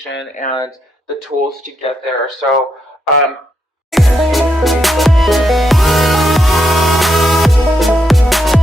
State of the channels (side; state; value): both; normal; correlation 0.80